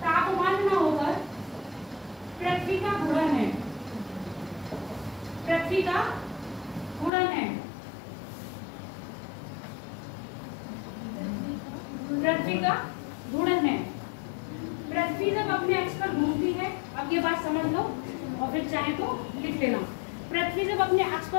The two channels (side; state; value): right; drops out; at 7.1 s